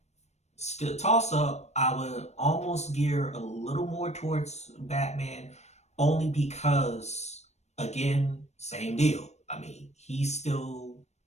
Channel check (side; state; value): right; late; 0.32 ms